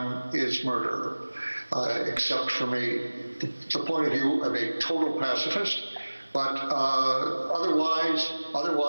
is murder, except from the point of view of a total pacifist. But otherwise,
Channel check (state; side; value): inverted; both; correlation -1.00